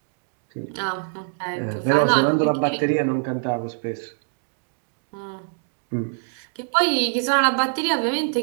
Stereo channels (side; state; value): left; silent; 63 dB below the other